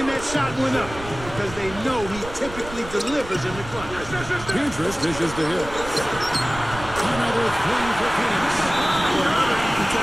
that shot went up because they know he typically delivers in the clutch. Pietrus dishes to Hill. Another three for Phoenix. Well, another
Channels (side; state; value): right; noise; rumble, 13 dB below the sound